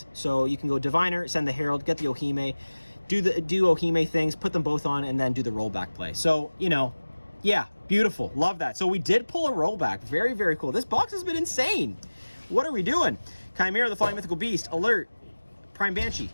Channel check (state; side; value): inverted; both; correlation -1.00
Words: So you can go Diviner, send the Herald, get the Ohime, do Ohime things, put them both on, and then do the rollback play. So, yeah, beautiful. Love that. So we did pull a rollback. Very, very cool. This box has been insane. What are we doing? Chimera, the Flying Mythical Beast, Alert, Prime Banshee,